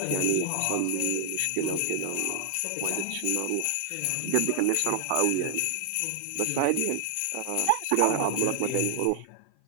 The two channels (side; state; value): both; different; correlation 0.00